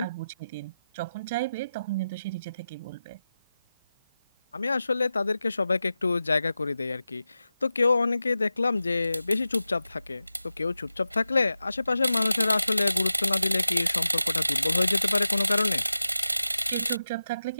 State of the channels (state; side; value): inverted; both; correlation -0.93